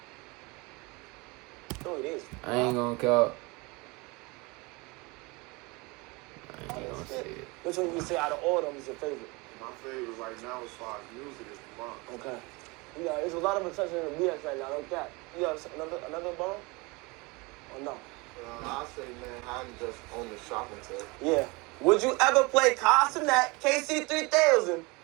No, it is. I ain't gonna count. I ain't gonna say it. Which one you say out of all of them is your favorite? My favorite right now as far as music is the Bronx. Okay. Yeah, there's a lot of attention in the BX right now. No cap. You got another borough? Or no? I say, man, I'm just on the shopping tip. Yeah. Would you ever play Castanet KC3000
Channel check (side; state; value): left; quieter; 26.2 dB